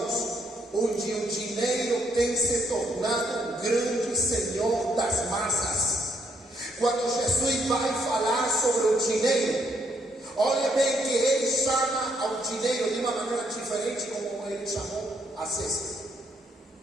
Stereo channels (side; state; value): both; normal; correlation 0.72